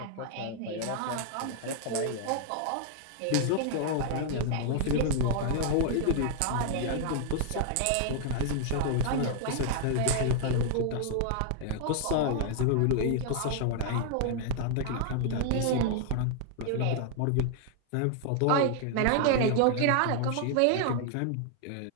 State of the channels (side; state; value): both; different; correlation 0.00